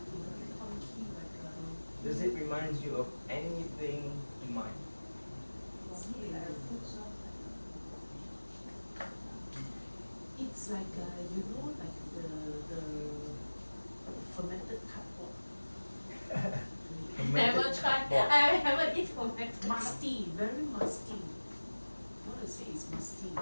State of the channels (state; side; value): inverted; both; correlation -1.00